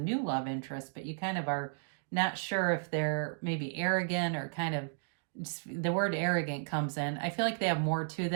love interest, but you kind of are not sure if they're maybe arrogant or kind of, the word arrogant comes in. I feel like they have more to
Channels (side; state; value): left; silent; digital silence